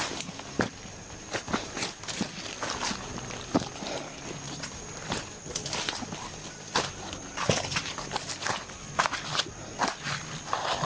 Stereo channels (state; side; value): identical; both; correlation 1.00